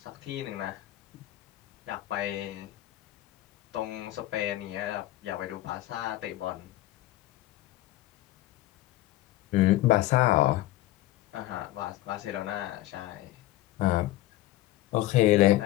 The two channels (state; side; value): quieter; right; 16.0 dB